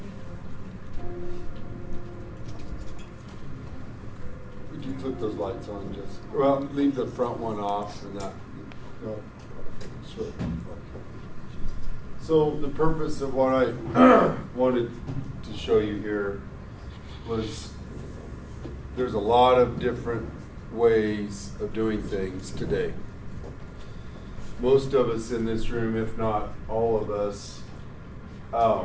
Would you flip those lights on, just well, leave the front one off and that. No. Sure. So the purpose of what I wanted to show you here was there's a lot of different ways of doing things today. Most of us in this room, if not all of us,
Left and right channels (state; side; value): identical; both; correlation 1.00